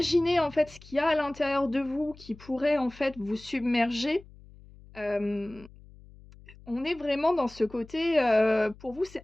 en fait, ce qu'il y a à l'intérieur de vous qui pourrait, en fait, vous submerger, hem, on est vraiment dans ce côté, pour vous, c'est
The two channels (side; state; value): left; noise; hum, 22 dB below the sound